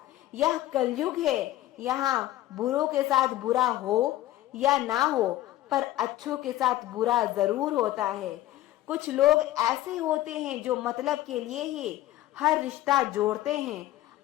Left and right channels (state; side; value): quieter; right; 15.0 dB